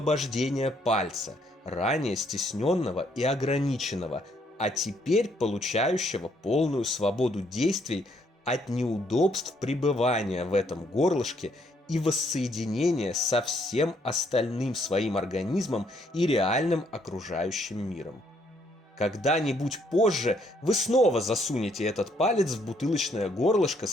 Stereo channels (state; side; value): normal; both; correlation 0.69